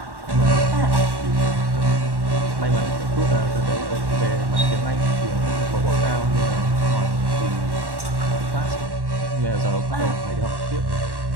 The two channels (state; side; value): late; left; 1.1 ms